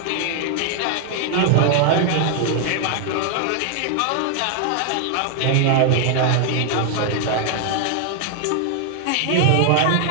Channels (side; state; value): both; different; correlation 0.00